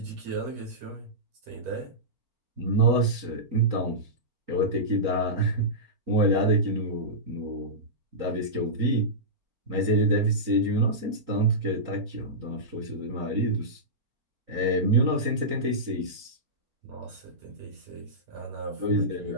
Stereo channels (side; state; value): left; late; 4.4 ms